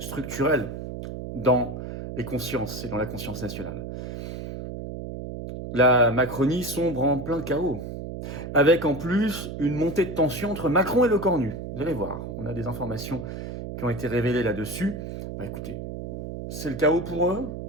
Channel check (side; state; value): right; noise; hum, 7 dB below the sound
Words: structurels dans les consciences et dans la conscience nationale. La Macronie sombre en plein chaos, avec en plus une montée de tension entre Macron et le Cornu. Vous allez voir, on a des informations qui ont été révélées là-dessus. Écoutez, c'est le chaos pour eux,